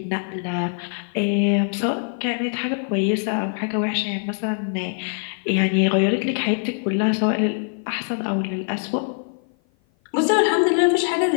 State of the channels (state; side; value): silent; right; 55 dB below the other